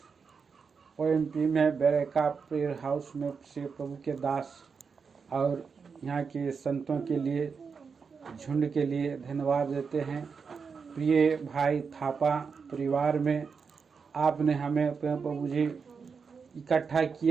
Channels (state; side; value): quieter; left; 5.6 dB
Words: ओएमपी में बेरेका प्रेयर हाउस में से प्रभु के दास और यहाँ के संतों के लिए, झुंड के लिए धन्यवाद देते हैं। प्रिय भाई थापा परिवार में आपने हमें प्रभु जी इकट्ठा